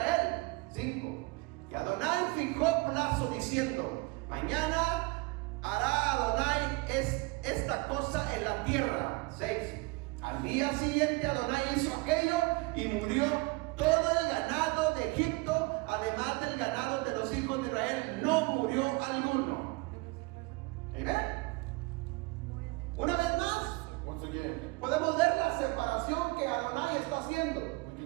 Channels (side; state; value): left; quieter; 25.4 dB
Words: 5. Y Adonai fijó plazo diciendo: mañana hará Adonai esta cosa en la tierra. 6. Al día siguiente Adonai hizo aquello y murió todo el ganado de Egipto, además del ganado de los hijos de Israel, no murió alguno. ¿Amén? Una vez más, Once again, podemos ver la separación que Adonai está haciendo.